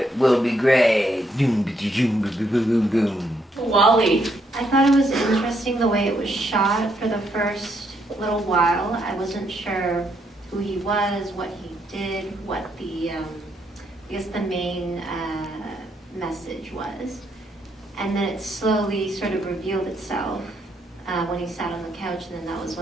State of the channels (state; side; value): normal; both; correlation 0.75